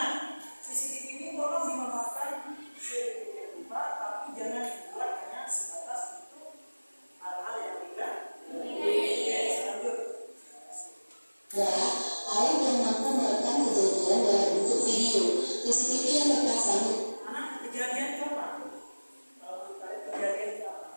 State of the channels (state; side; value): inverted; both; correlation -1.00